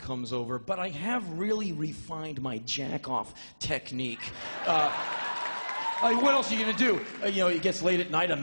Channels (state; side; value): inverted; both; correlation -1.00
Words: over, but I have really refined my jack-off technique. What else are you gonna do? It gets late at night, a